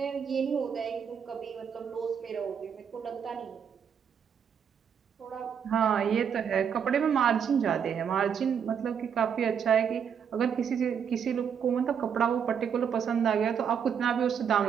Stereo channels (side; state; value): left; quieter; 7.5 dB